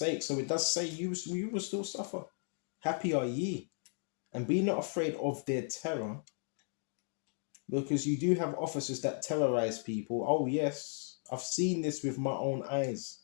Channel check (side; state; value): right; silent; 54 dB below the other